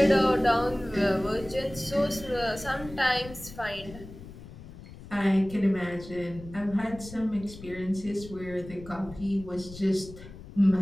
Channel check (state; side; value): noise; left; rumble, 15 dB below the sound